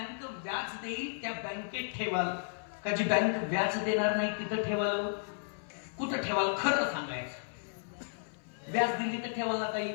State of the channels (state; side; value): silent; right; 55 dB below the other